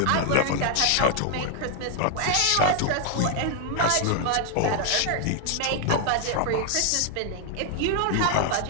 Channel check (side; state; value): both; different; correlation 0.00